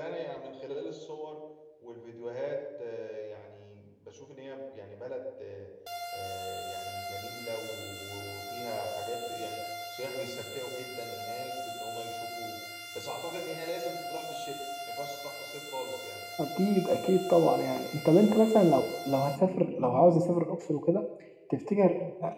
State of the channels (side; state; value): both; identical; correlation 1.00